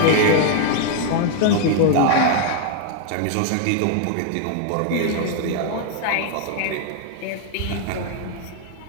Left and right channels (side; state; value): both; different; correlation 0.00